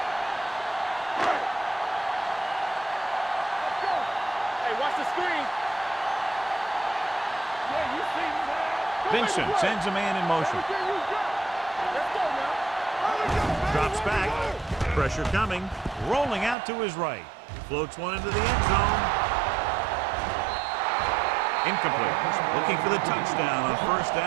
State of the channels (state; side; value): drops out; left; at 16.6 s